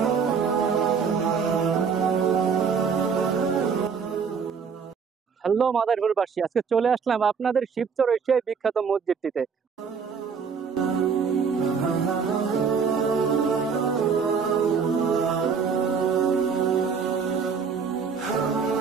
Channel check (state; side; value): quieter; left; 6.0 dB